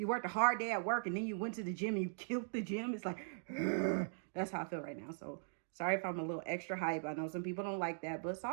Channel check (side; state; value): left; silent; digital silence